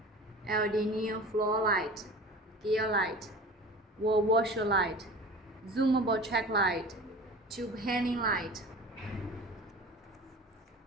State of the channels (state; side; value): normal; both; correlation 0.38